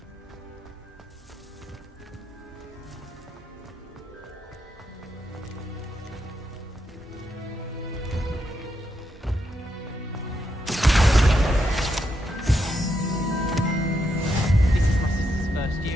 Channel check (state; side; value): normal; both; correlation 0.81